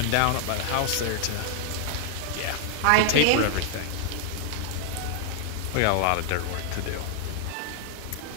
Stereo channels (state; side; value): different; both; correlation 0.00